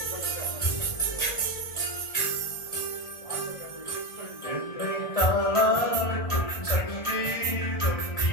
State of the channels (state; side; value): late; right; 1.5 ms